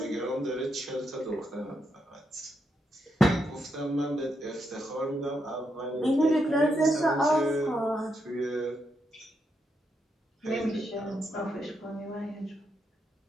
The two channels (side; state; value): both; normal; correlation 0.81